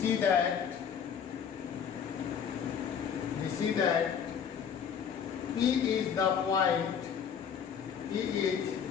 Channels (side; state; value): right; quieter; 7.6 dB